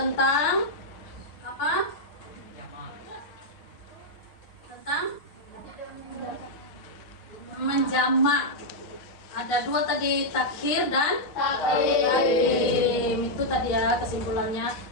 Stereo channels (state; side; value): late; right; 6.7 ms